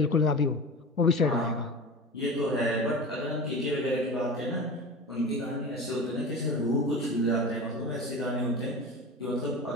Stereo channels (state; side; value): normal; both; correlation 0.31